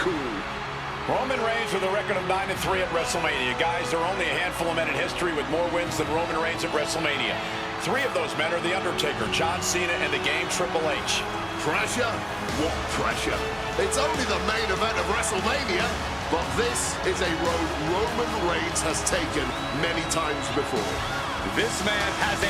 Roman Reigns with a record of 9-3 at WrestleMania. Guys, there are only a handful of men in history with more wins than Roman Reigns at WrestleMania. 3 of those men are The Undertaker, John Cena, and the Game Triple H. Pressure? What pressure? It's only the main event of WrestleMania, but this is a road Roman Reigns has taken many times before. This man has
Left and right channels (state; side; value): identical; both; correlation 1.00